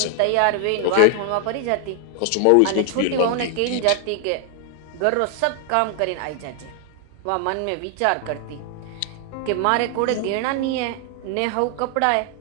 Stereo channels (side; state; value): both; different; correlation 0.00